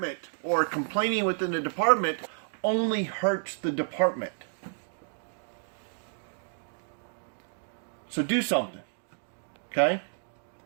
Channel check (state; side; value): silent; left; digital silence